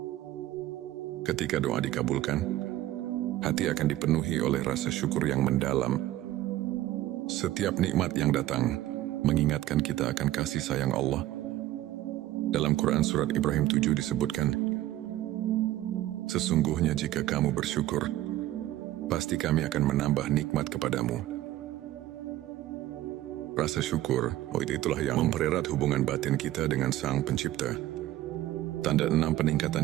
Ketika doa dikabulkan, hati akan dipenuhi oleh rasa syukur yang mendalam. Setiap nikmat yang datang mengingatkan kita akan kasih sayang Allah. Dalam Quran Surat Ibrahim 7 disebutkan, sesungguhnya jika kamu bersyukur, pasti kami akan menambah nikmat kepadamu. Rasa syukur, itulah yang mempererat hubungan batin kita dengan Sang Pencipta. Tanda 6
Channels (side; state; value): left; quieter; 14.7 dB